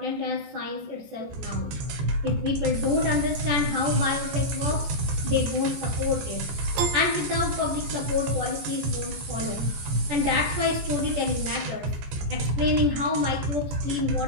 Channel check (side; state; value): left; late; 14 ms